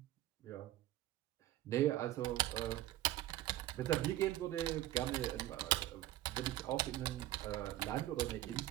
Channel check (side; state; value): left; quieter; 14.6 dB